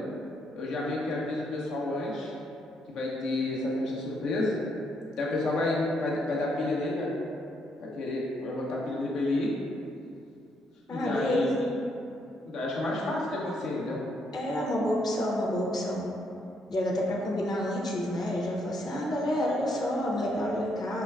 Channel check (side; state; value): both; normal; correlation 0.74